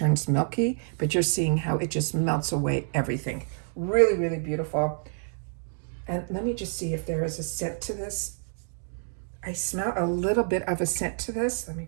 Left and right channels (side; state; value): left; silent; digital silence